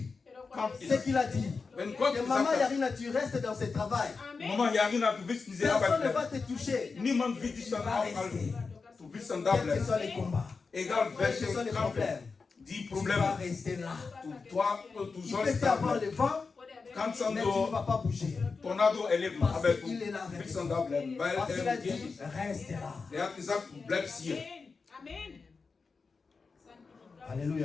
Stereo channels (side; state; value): right; quieter; 4.6 dB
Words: Kampf ce ist. qu'il a dit, Wenn Gott que gesagt maman hat, Yarina, tu restes dans ce travail. Mama Yarina, du willst diese Personne Arbeit ne va bleiben. te toucher. Niemand wird dich dann aufhalten. Du willst dann da Quels que bleiben. soient les combats, Egal quels que welche soient les Kampf, problèmes, die tu vas Probleme, rester là. du Il sollst peut y da avoir bleiben. le vent, Kannst dann mais tu ne so vas pas bouger. Tornado erleben, Parce aber du qu'il est là avec willst toi. dann da bleiben, weil Parce qu'il a er mit dir dit, ist. reste là. Er hat gesagt, du bleibst hier.